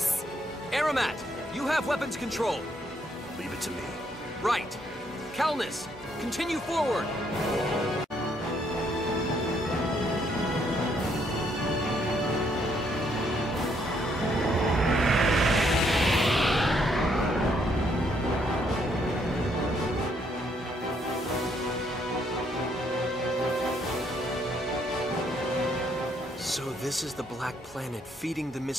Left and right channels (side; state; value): both; normal; correlation 0.71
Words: Aramat, you have weapons control. Leave it to me. Right. Calnus, continue forward. So this is the Black Planet feeding the